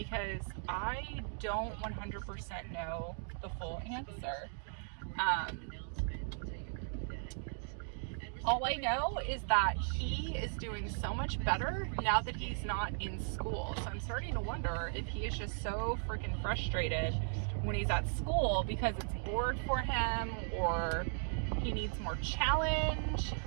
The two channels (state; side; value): silent; left; 53 dB below the other